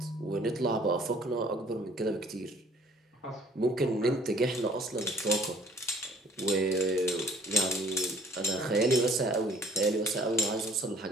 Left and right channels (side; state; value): both; normal; correlation 0.57